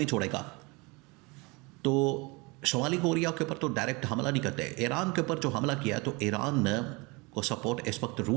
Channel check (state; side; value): quieter; left; 26.8 dB